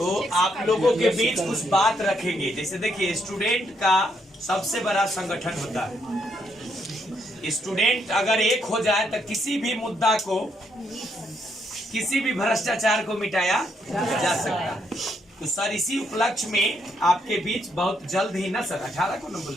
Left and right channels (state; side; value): normal; both; correlation 0.75